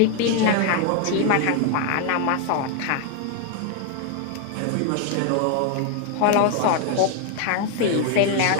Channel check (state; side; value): different; both; correlation 0.00